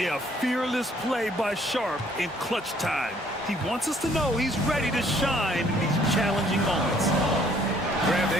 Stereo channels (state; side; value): normal; both; correlation 0.62